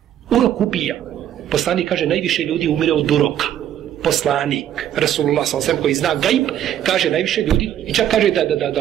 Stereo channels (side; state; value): left; quieter; 10.9 dB